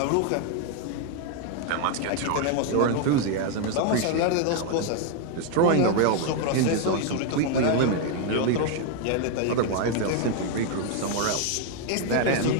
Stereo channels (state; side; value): different; both; correlation 0.00